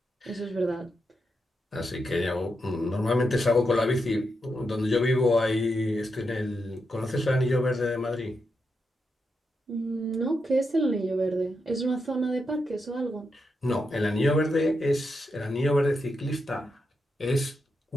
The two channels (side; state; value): both; normal; correlation 0.85